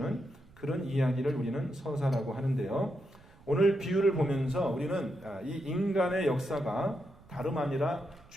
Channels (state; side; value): noise; right; rumble, 25 dB below the sound